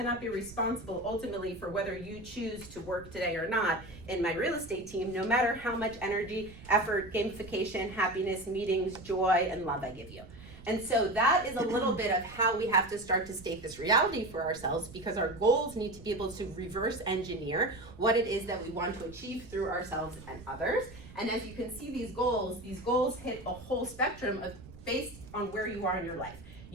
be responsible ultimately for whether you choose to work today or not in my real estate team, no matter how much energy, effort, gamification, happiness, meetings, joy, and love I give you. And so that is a little bit of how we have to start to state this reality for ourselves, because our goals need to be able to reverse engineer what it is that we want to achieve through ourselves and others. And as you can see, these goals hit a whole spectrum of based on where you are in your life.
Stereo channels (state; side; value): noise; right; rumble, 17 dB below the sound